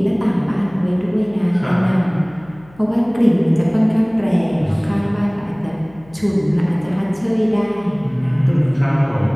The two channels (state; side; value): noise; left; hum, 25 dB below the sound